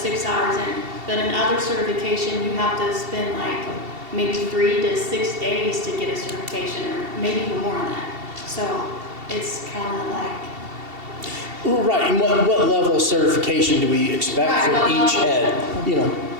hours in, but in other certification, you have to spend like maybe 3 to 6 days to get a certification, or maybe even more than that. So it's kind of like, Well, right, and what level of certification do we expect Right, from what each level? head? You know,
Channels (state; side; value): late; left; 2.7 ms